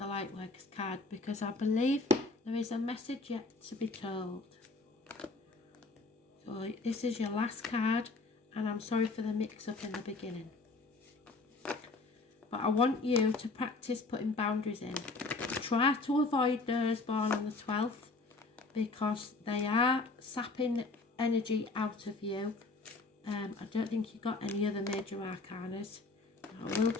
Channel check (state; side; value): quieter; right; 3.6 dB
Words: Lightworkers card, because I believe there is a message yet to be told. So this is your last card, and I'm sorry for the mix-up in the beginning. But I want you to practice putting boundaries in. Try to avoid those born on the 12th, because they are sapping energy out of you. I don't think you got any other major arcanas. I will